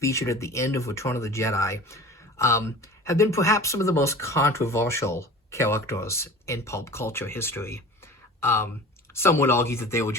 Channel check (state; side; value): normal; both; correlation 0.39